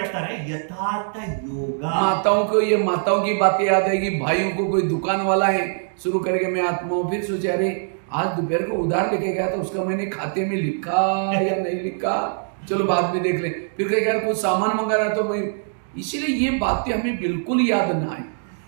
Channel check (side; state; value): left; silent; digital silence